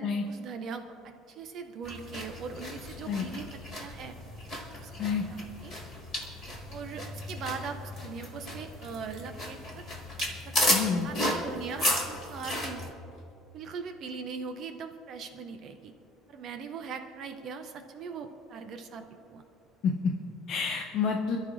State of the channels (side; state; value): both; normal; correlation 0.50